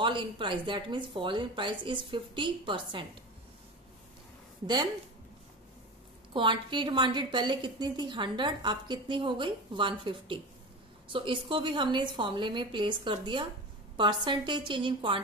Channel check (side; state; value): both; normal; correlation 0.28